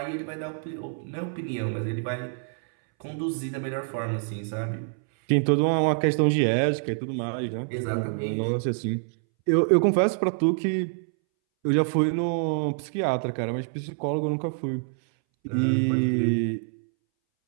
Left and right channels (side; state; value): left; silent; 61 dB below the other